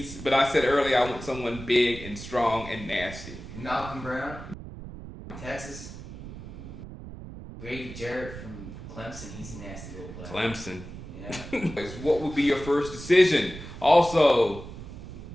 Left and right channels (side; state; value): right; noise; rumble, 12 dB below the sound